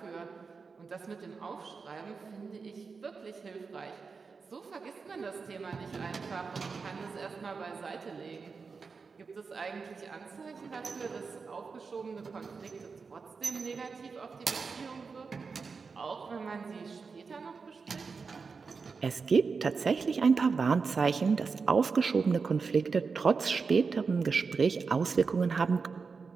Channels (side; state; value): left; quieter; 4.9 dB